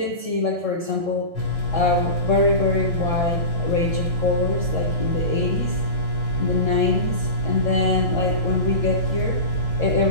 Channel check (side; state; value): left; late; 1.6 ms